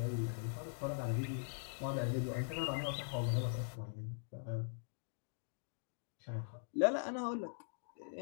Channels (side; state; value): right; silent; digital silence